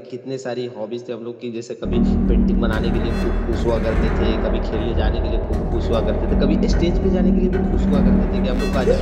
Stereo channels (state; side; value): identical; both; correlation 1.00